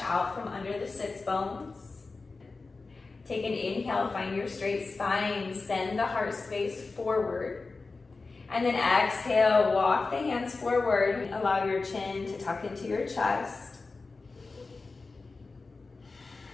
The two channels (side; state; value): right; quieter; 3.9 dB